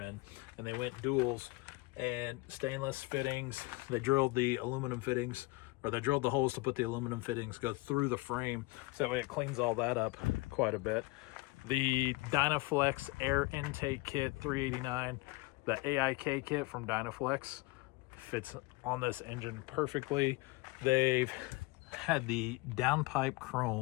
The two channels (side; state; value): right; quieter; 23.9 dB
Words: and they went duals and stainless fittings. They drilled the aluminum fittings, or they drilled the holes to put the aluminum fittings go through the frame, so that way it cleans all that up quite a bit. The Dynaflex Air Intake Kit 389, the AIK kit from Dynaflex, fits on this engine perfectly. They've had the downpipe